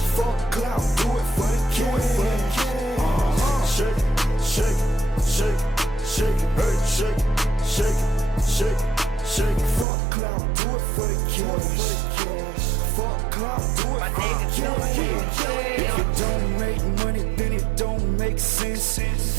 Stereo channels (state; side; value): drops out; left; at 9.9 s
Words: Fuck clout, do it for the cash. Shake it, shake it, shake it, shake it, hey, shake it, shake it, shake it, shake it. Fuck clout, do it for the cash. Fuck clout, do it for the cash. If it don't make money, then it don't make sense.